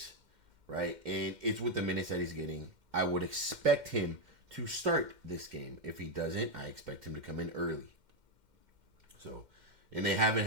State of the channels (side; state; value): left; late; 2.1 ms